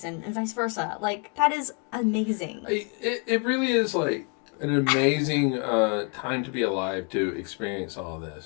and vice versa. Like, that is amazing. It really is like an amazing time to be alive to experience all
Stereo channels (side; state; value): right; quieter; 35.0 dB